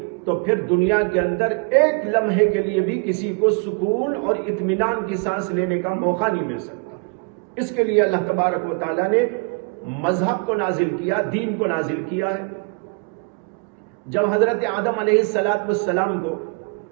تو پھر دنیا کے اندر ایک لمحے کے لیے بھی کسی کو سکون اور اطمینان کی سانس لینے کا موقع نہیں مل سکتا. اس کے لیے اللہ تبارک و تعالیٰ نے مذہب کو نازل کیا، دین کو نازل کیا ہے. جب حضرت آدم علیہ السلام کو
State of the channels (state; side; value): quieter; left; 33.2 dB